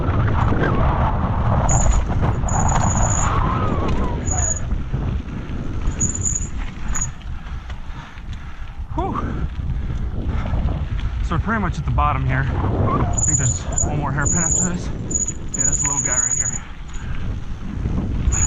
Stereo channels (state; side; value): identical; both; correlation 1.00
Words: Whew. So we're pretty much at the bottom here. I think there's one more hairpin after this. Yeah, this little guy right here.